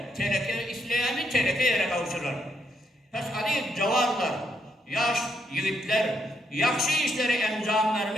teneke İslami teneke yere kavuşurlar. Pes hadi cavarlar, yaş yiğitler, yakşı işleri encam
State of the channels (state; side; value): normal; both; correlation 0.77